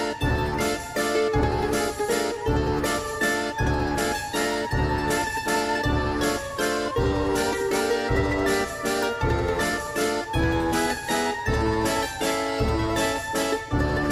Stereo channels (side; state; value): both; identical; correlation 1.00